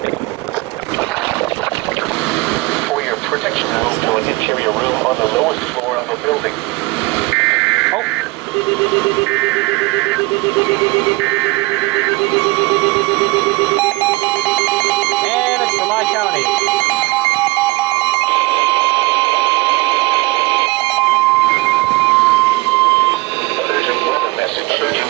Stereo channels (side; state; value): left; quieter; 22.5 dB